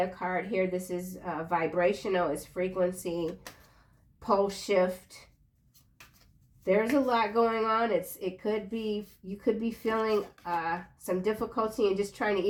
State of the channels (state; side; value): identical; both; correlation 1.00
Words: card here. This is vibrational, it's frequency, pole shift. There's a lot going on. It could be, you could be feeling some difficulty in just trying to